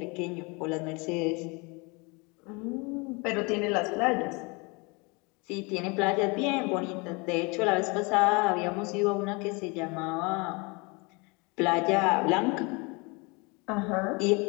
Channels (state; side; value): quieter; right; 28.6 dB